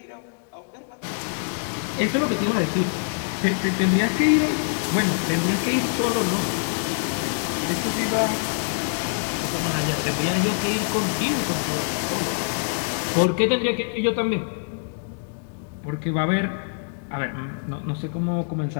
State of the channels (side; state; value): right; silent; digital silence